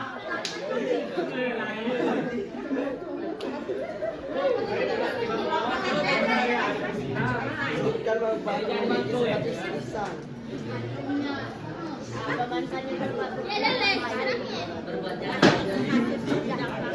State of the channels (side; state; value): both; identical; correlation 1.00